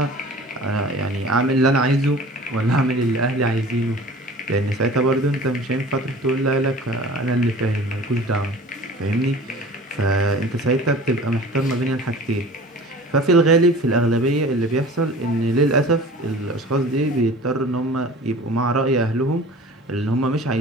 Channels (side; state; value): both; normal; correlation 0.43